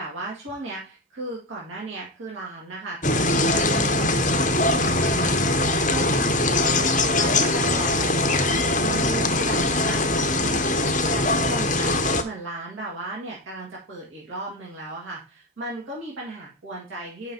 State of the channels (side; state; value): both; normal; correlation 0.16